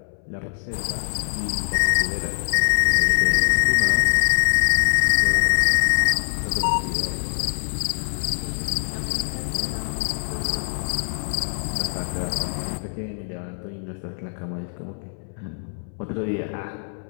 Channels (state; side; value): silent; right; 63 dB below the other